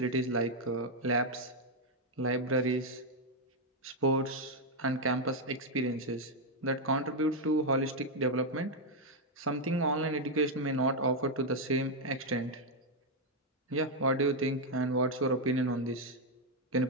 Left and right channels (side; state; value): both; normal; correlation 0.01